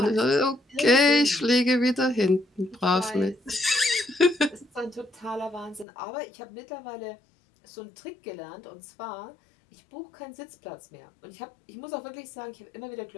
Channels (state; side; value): drops out; right; at 5.9 s